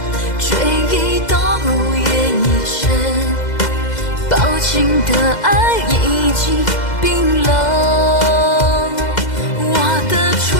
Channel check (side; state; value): right; late; 2.0 ms